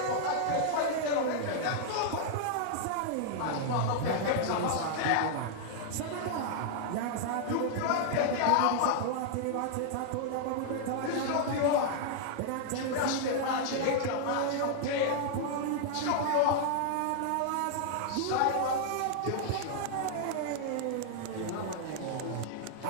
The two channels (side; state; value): both; different; correlation -0.01